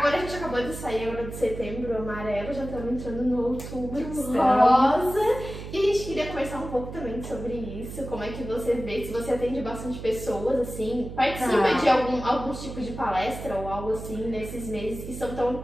a gente acabou de sair agora de setembro amarelo, já estamos entrando no outubro rosa. E a gente queria conversar um pouco também sobre isso, como é que você vê, se você atende bastante pessoas, assim, participa de alguns tipos de palestra ou algo assim nesses meses que são tão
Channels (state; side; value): noise; right; hum, 10 dB below the sound